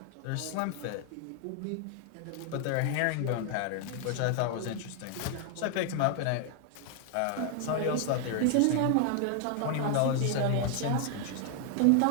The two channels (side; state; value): both; different; correlation 0.00